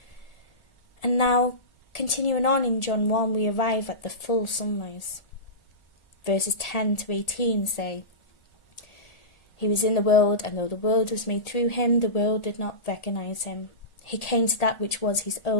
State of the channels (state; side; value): late; right; 1.8 ms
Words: And now, continuing on in John 1, we arrive at the full sunrise. Verses 10 to 18 say, He was in the world, and though the world was made through him, the world did not recognize him. He came to that which was his